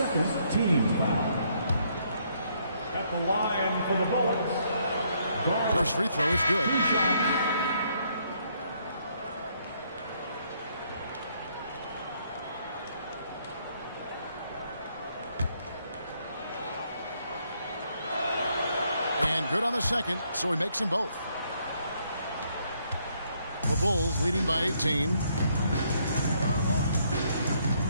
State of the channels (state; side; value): inverted; both; correlation -0.71